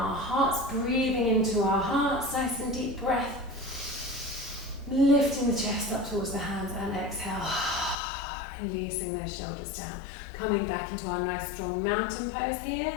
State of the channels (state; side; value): drops out; right; at 8.0 s